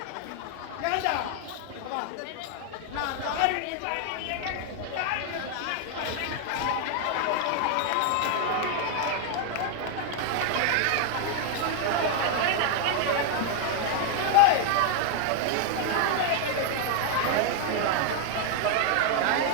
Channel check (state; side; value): different; both; correlation 0.00